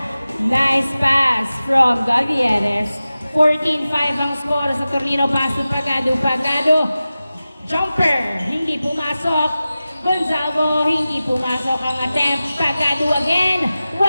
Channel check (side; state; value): both; inverted; correlation -0.95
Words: Nice pass from Gabieres. 14-5 ang score sa Tornino. Pass to Pagado. Jumper, hindi pumasok. Gonzalo, hindi pumasok ang attempt. Pagado again,